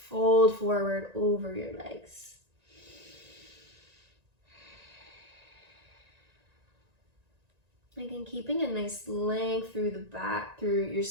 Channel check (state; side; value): late; left; 1.9 ms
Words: forward over your legs. Again, keeping a nice length through the back, through your